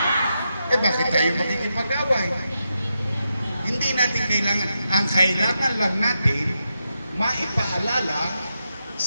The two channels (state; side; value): inverted; both; correlation -0.86